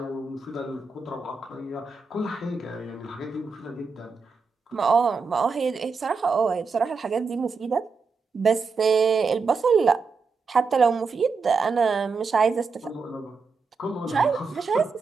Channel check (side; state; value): left; quieter; 4.8 dB